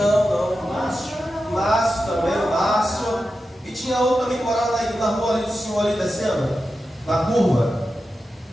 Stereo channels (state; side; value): normal; both; correlation 0.91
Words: Márcio também, o Márcio. E tinha outro também morando aí na rua ali do senhor ali descendo, na curva.